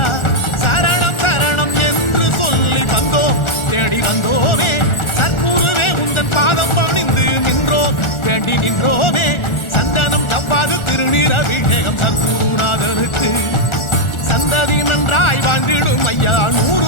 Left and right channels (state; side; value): late; right; 1.4 ms